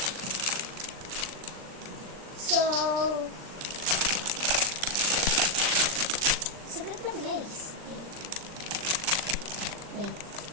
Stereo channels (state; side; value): late; left; 39 ms